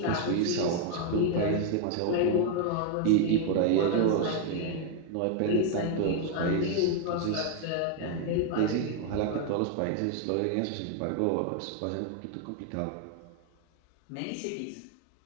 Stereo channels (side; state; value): both; different; correlation 0.00